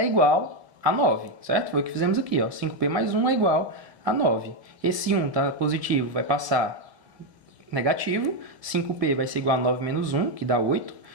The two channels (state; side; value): late; left; 1.9 ms